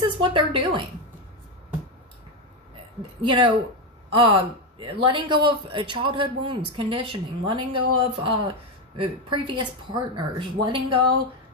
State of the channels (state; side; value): normal; both; correlation 0.10